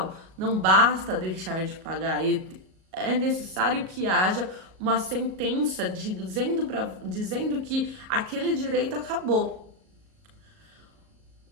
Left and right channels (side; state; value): left; late; 38 ms